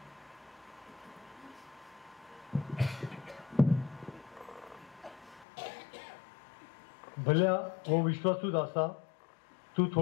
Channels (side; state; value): right; drops out; at 5.5 s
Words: भल्या व विश्वासू दासा, तू